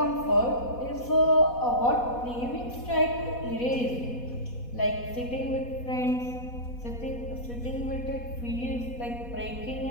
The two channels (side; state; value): right; late; 4.1 ms